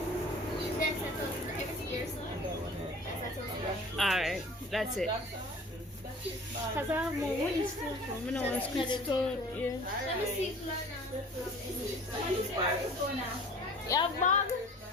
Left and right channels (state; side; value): normal; both; correlation 0.45